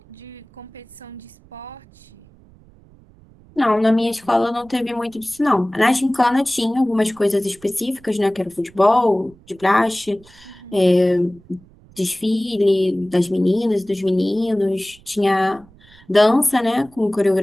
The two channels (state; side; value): noise; right; rumble, 26 dB below the sound